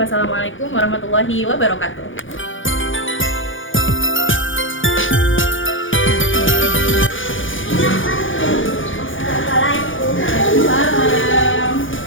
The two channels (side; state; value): right; late; 0.57 ms